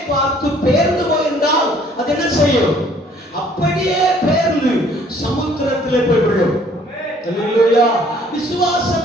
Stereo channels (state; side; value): normal; both; correlation 0.59